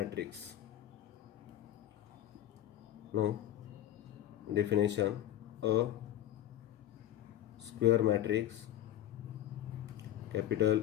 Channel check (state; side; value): quieter; right; 12.2 dB